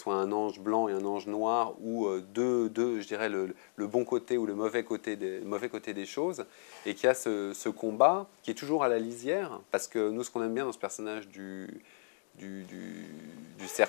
un ange blanc et un ange noir, ou je dirais, le bon côté ou le mauvais côté des choses, et qu'il y a ce combat qui est toujours à la lisière, parce que nous, ce qu'on aime bien dans ce personnage du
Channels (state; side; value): silent; right; digital silence